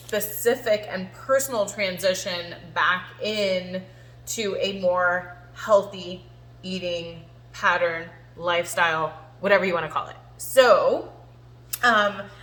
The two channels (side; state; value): both; identical; correlation 1.00